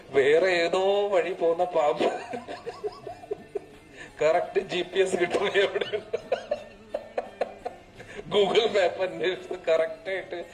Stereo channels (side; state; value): both; identical; correlation 1.00